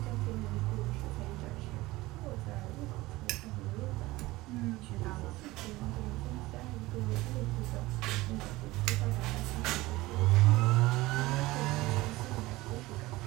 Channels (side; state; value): left; quieter; 19.4 dB